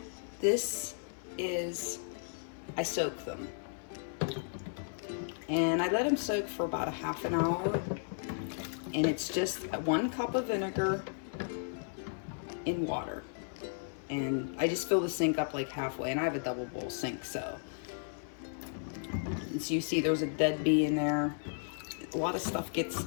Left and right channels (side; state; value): right; silent; 55 dB below the other